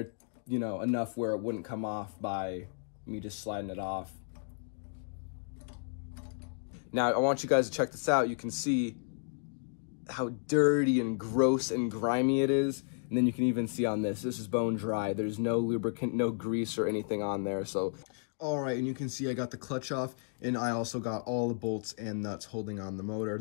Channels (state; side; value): silent; right; 56 dB below the other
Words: you know, enough where it wouldn't come off by me just sliding it off. Now, I want you guys to check this out. You can see how dirty and gross and grimy it is. And then you can even see on this is bone dry. There's no lubricant, no grease or anything on there. So, all right, and you can see I got the clutch off and I also got all the bolts and nuts holding on the motor.